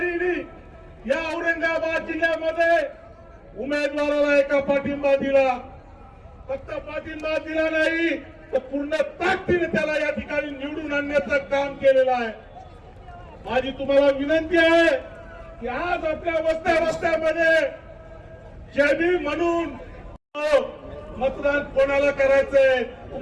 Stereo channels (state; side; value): identical; both; correlation 1.00